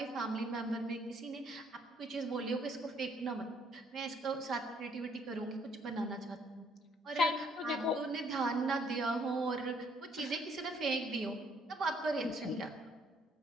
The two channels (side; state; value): both; normal; correlation 0.66